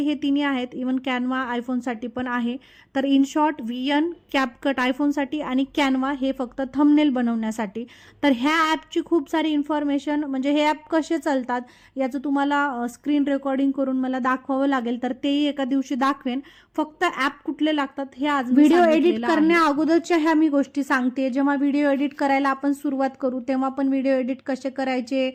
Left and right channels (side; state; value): both; identical; correlation 1.00